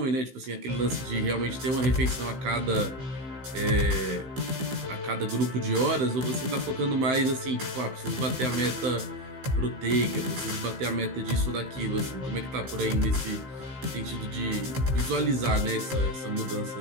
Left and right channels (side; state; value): left; late; 15 ms